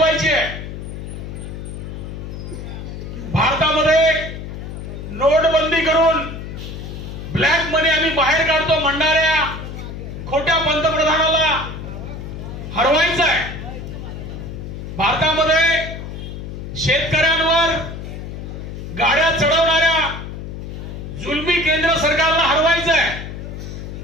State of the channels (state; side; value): noise; left; hum, 9 dB below the sound